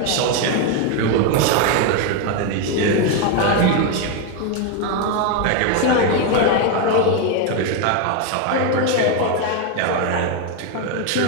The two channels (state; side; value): different; both; correlation 0.02